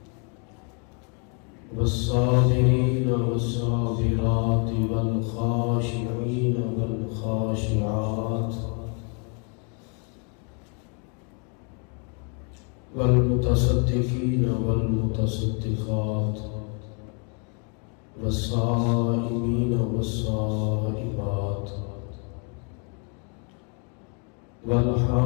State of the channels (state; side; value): quieter; right; 38.4 dB